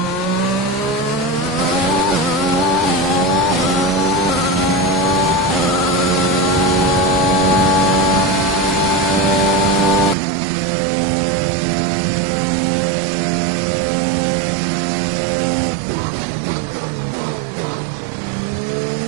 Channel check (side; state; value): left; drops out; at 10.2 s